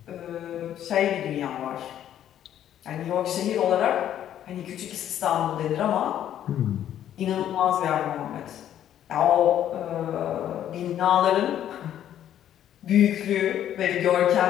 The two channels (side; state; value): right; quieter; 10.9 dB